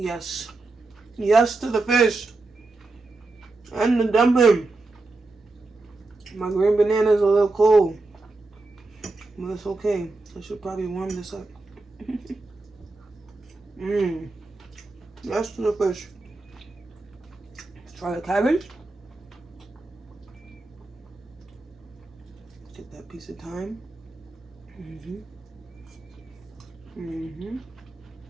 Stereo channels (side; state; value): left; quieter; 3.3 dB